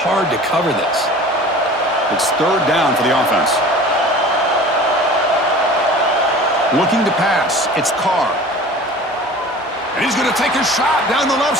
to cover this. It's third down for the offense. Looking to pass, it's Carr. And he's going to take a shot down the left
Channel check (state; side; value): normal; both; correlation 0.41